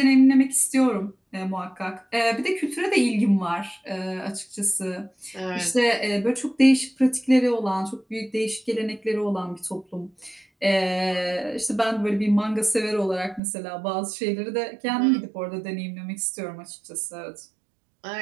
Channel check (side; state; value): left; drops out; at 13.4 s